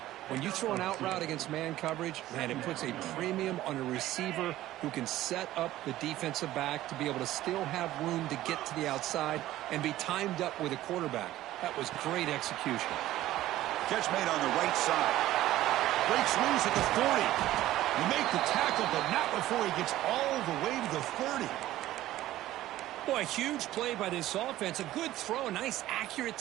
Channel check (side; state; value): left; quieter; 14.8 dB